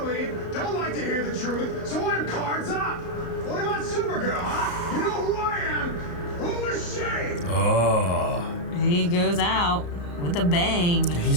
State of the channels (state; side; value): late; right; 34 ms